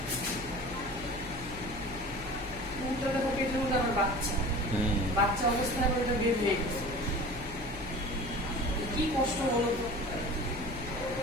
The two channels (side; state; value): left; noise; hum, 14 dB below the sound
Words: বাচ্চা অবস্থায় ওটা বের হয়ে গেছে, কি কষ্ট বলো তো।